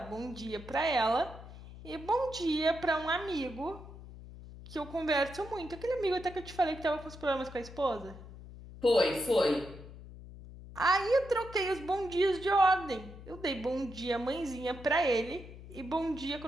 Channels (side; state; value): left; noise; hum, 15 dB below the sound